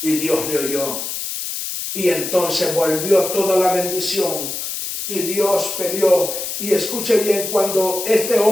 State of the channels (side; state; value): left; noise; hiss, 5 dB below the sound